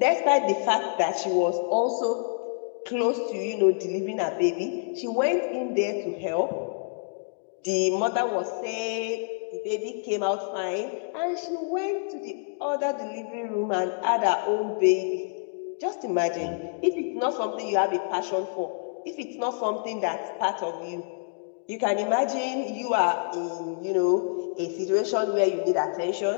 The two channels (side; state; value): right; silent; digital silence